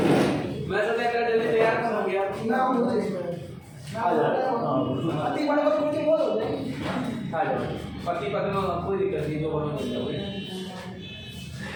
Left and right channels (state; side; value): identical; both; correlation 1.00